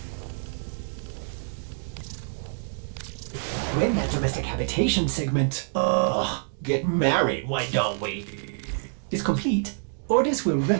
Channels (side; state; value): left; silent; digital silence